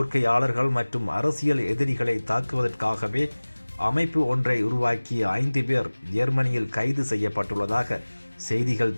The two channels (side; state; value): both; inverted; correlation -1.00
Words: மற்றும் அரசியல் எதிரிகளை தாக்குவதற்காகவே அமைப்பு ஒன்றை உருவாக்கிய 5 பேர் ஜெர்மனியில் கைது செய்யப்பட்டுள்ளதாக செய்திகள்